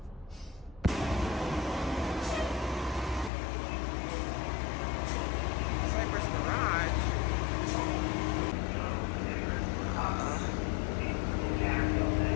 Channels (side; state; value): right; drops out; at 3.3 s